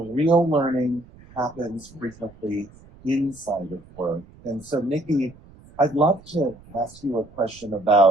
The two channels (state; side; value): noise; right; rumble, 23 dB below the sound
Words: learning happens frequently inside of work. And so, Nikki, I'd love to ask you a question